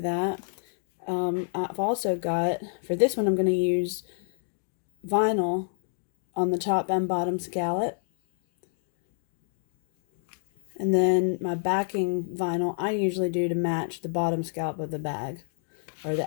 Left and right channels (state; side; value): silent; right; digital silence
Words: that. I've also got, for this one, I'm going to use vinyl on the top and bottom scallop. And then my backing vinyl, I usually do to match the bottom scallop of the bag, or